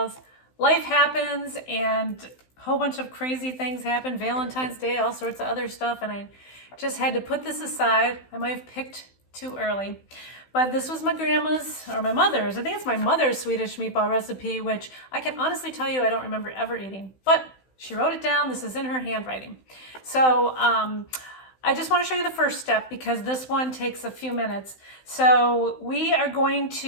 Life happens and a whole bunch of crazy things happen, Valentine's Day, all sorts of other stuff, and I just had to put this aside. I might have picked too early. But this was my grandma's, or my mother's, I think it's my mother's Swedish meatball recipe, which I can honestly tell you I don't remember ever eating. But she wrote it down, this is in her handwriting. So I just want to show you the first step because this one takes a few minutes. So we are going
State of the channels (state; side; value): late; right; 16 ms